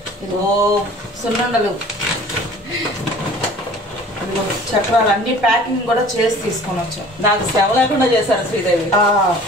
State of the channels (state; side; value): normal; both; correlation 0.47